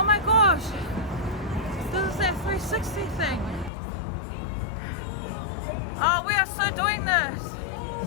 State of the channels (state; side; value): drops out; right; at 3.7 s